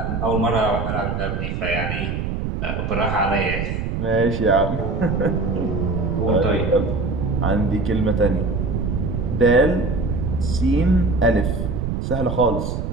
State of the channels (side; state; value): right; noise; rumble, 3 dB below the sound